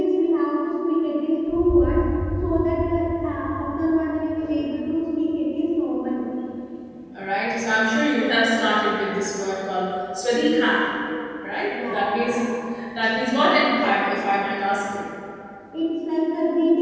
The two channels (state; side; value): identical; both; correlation 1.00